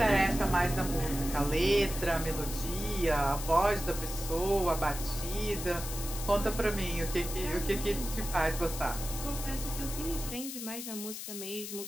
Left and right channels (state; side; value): noise; left; hiss, 8 dB below the sound